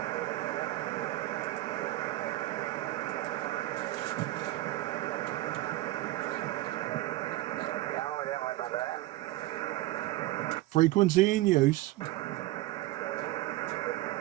Frequency in use.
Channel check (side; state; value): left; quieter; 16.9 dB